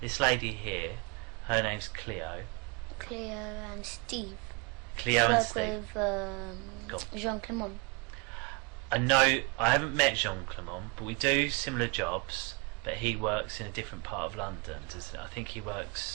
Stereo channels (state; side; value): quieter; left; 30.4 dB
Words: lady here, her name's Cleo. Cleo and Steve. Cleo and Steve. I work with Jean Clement. I know, I haven't met Jean Clement, but we do similar jobs, but he works in a different part of London, doesn't he? I think he